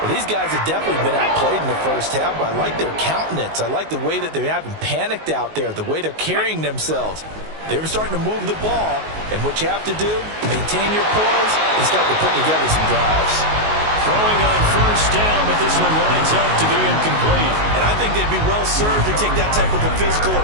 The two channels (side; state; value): left; late; 19 ms